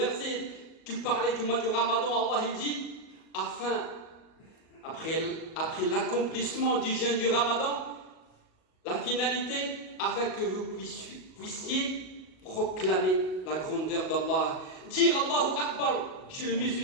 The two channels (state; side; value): late; right; 37 ms